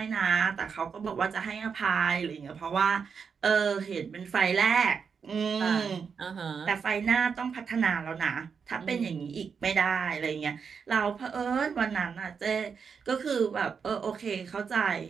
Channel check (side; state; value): left; quieter; 6.1 dB